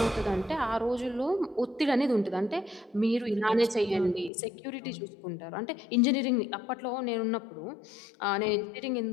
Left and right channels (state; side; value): drops out; right; at 4.3 s